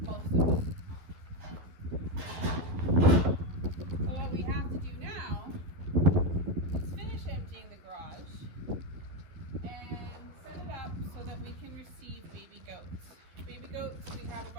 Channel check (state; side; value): late; left; 12 ms